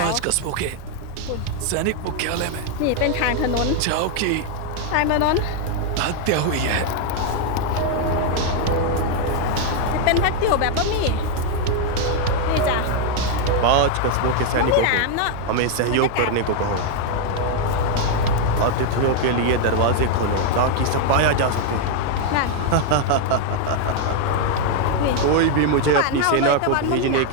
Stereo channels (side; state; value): both; different; correlation 0.00